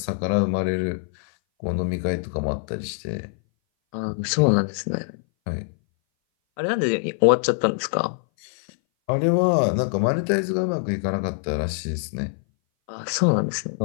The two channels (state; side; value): silent; right; 59 dB below the other